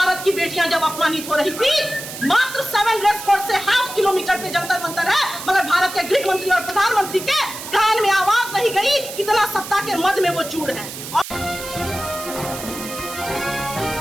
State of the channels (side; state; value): right; noise; hiss, 10 dB below the sound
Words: की बेटियां जब अपमानित हो रही थी, मात्र 7 रेस कोर्स से ½ किलोमीटर पे जंतर मंतर है, मगर भारत के गृह मंत्री और प्रधानमंत्री के कान में आवाज नहीं गई, इतना सत्ता के मद में वो चूड़ है।